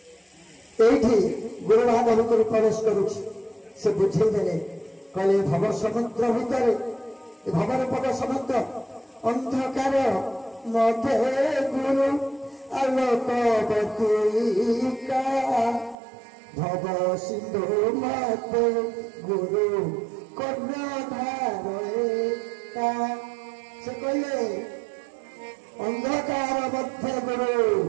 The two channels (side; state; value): left; drops out; at 16.0 s